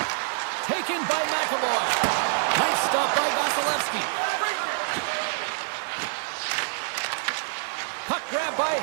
Taken by McAvoy. Nice stop by Vasilevsky. Puck grab by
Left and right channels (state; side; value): silent; left; 61 dB below the other